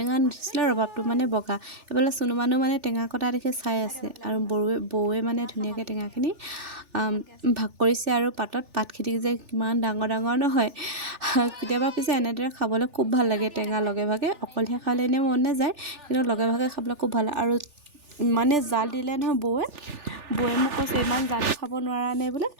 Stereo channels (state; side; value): late; left; 3.4 ms